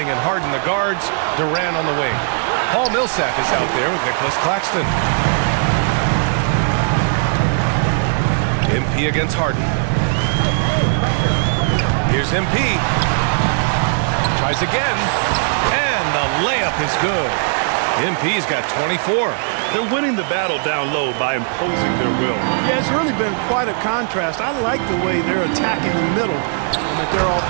and Harden the guards, Durant on the wing. Paul Millsap is out there with Nicholas Claxton. MP against Harden. Here's MP. Tries again. And the layup is good. MP's got 24. They're winning the battle down low by imposing their will. Yeah, it's really been quite a contrast. I like the way they're attacking the middle at their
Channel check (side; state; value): left; silent; digital silence